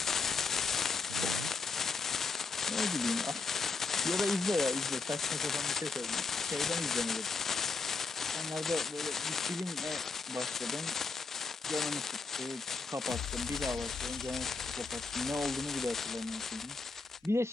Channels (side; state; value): right; quieter; 4.3 dB